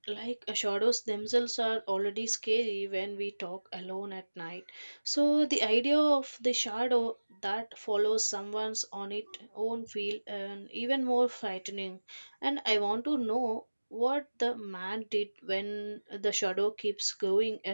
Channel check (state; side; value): inverted; both; correlation -1.00